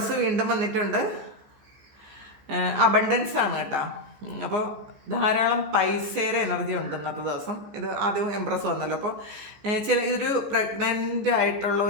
വീണ്ടും വന്നിട്ടുണ്ട്. അബണ്ടൻസ് ആണ് കേട്ടോ. അപ്പോൾ ധാരാളം പൈസയുടെ എനർജി ഉണ്ട് ഇന്നത്തെ ദിവസം. ഇത് ആദ്യം എംപ്രസ് വന്നല്ലോ. അപ്പോൾ ഇതൊരു പ്രഗ്നൻ്റ് ആയിട്ടുള്ള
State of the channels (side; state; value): left; late; 14 ms